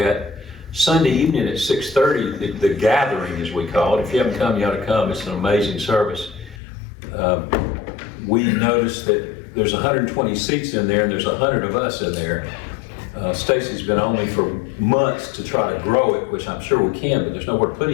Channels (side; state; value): right; drops out; at 6.6 s